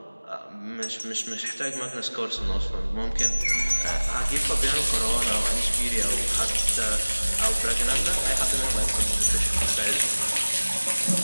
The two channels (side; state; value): both; inverted; correlation -1.00